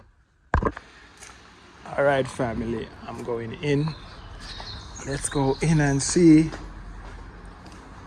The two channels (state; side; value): identical; both; correlation 1.00